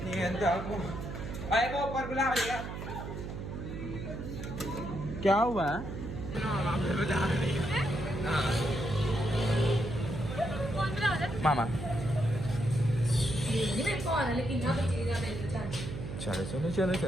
ऊपर बुला लिया, क्या हुआ? मामा चलो चलो चलो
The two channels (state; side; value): noise; right; hum, 7 dB below the sound